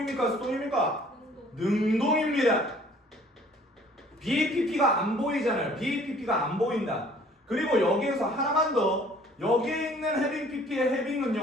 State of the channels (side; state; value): both; normal; correlation 0.55